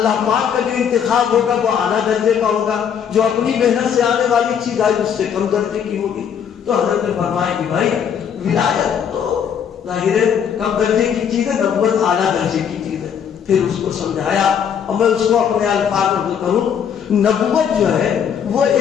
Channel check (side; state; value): right; quieter; 8.0 dB